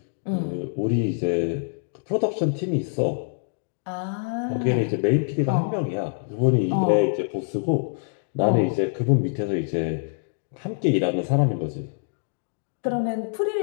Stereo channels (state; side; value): silent; right; digital silence